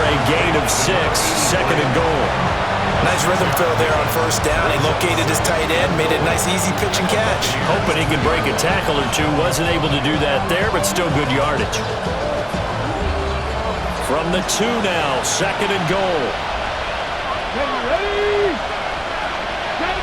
gain of 6, 2nd and goal. Nice rhythm throw there on 1st down. He located his tight end, made a nice easy pitch and catch. Hoping he could break a tackle or 2. Wasn't able to do that there, but still good yardage. From the 2 now, 2nd and goal. Ready.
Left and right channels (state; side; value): identical; both; correlation 1.00